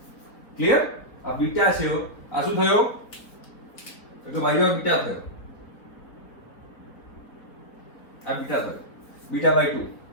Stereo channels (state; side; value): late; right; 4.3 ms